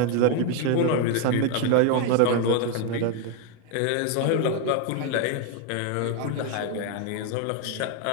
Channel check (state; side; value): different; both; correlation 0.01